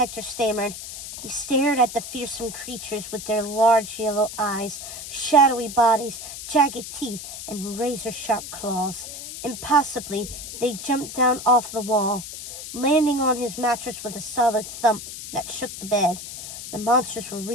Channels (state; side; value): noise; left; hiss, 10 dB below the sound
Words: stammered. He stared at the fearsome creatures with their large yellow eyes, shadowy bodies, jagged teeth, and razor-sharp claws. Impossibly, they jumped down off the wall, landing on his mattress with a solid thump that shook the bed. The monsters were